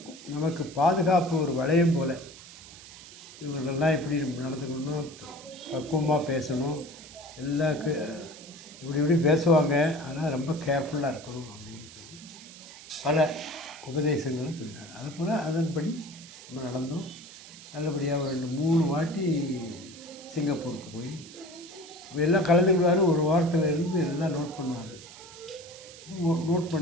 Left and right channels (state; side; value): noise; right; hiss, 17 dB below the sound